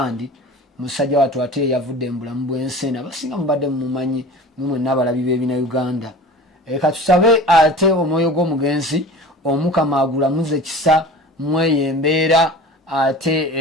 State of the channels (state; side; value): normal; both; correlation 0.38